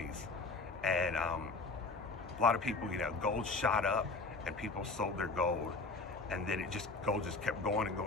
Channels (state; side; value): quieter; right; 3.8 dB